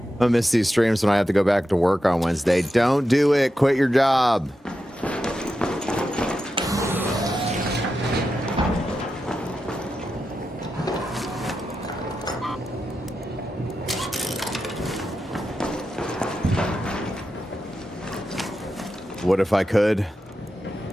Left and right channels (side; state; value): both; normal; correlation 0.89